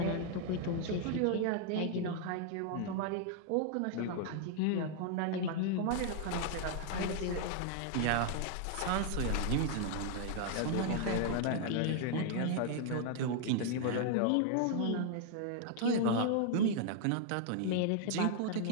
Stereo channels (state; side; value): different; both; correlation 0.00